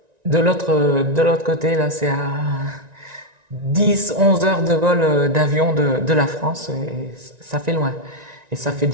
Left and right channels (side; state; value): left; late; 1.9 ms